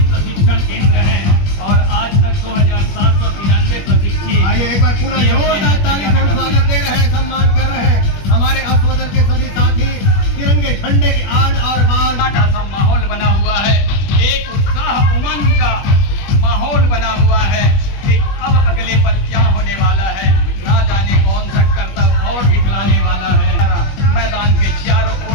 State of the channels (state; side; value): late; right; 21 ms